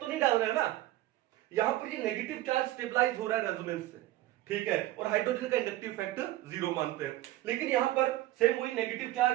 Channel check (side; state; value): left; quieter; 15.9 dB